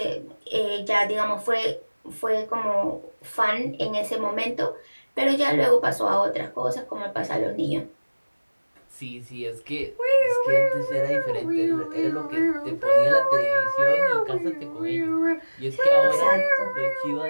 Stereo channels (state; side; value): inverted; both; correlation -1.00